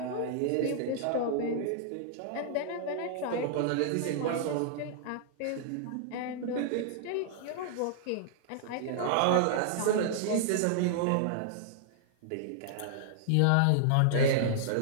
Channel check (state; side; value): different; both; correlation -0.01